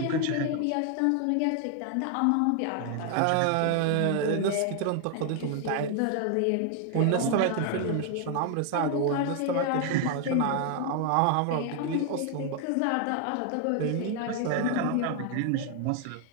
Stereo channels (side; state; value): both; different; correlation 0.00